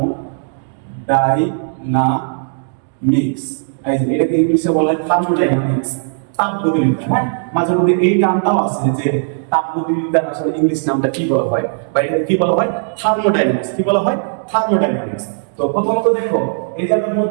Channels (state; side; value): silent; left; digital silence